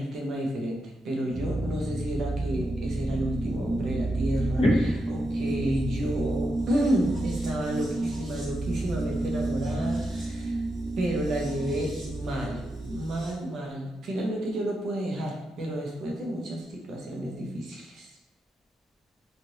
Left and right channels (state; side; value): normal; both; correlation 0.86